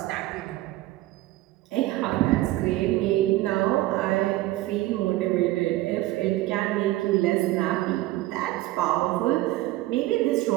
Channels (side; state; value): left; quieter; 17.3 dB